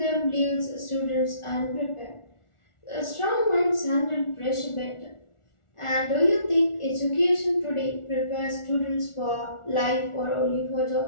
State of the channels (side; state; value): right; late; 1.4 ms